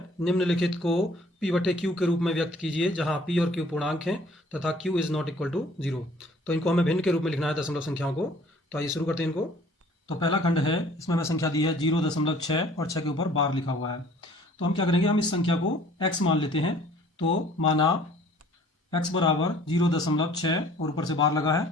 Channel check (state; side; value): normal; both; correlation 0.54